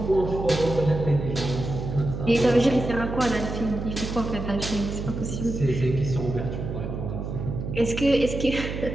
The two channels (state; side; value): noise; right; hum, 5 dB below the sound